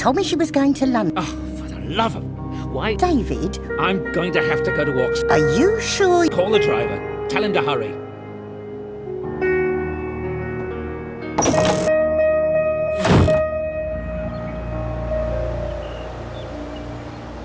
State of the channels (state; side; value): identical; both; correlation 1.00